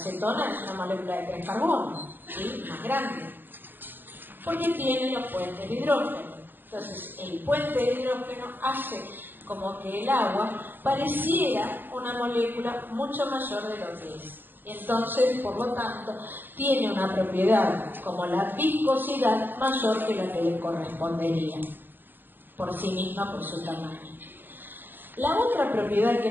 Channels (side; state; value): left; late; 0.095 ms